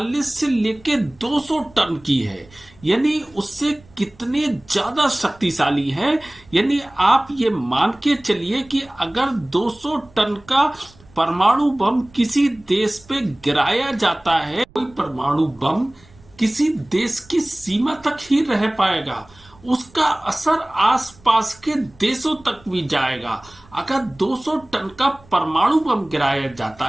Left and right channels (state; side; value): noise; right; rumble, 27 dB below the sound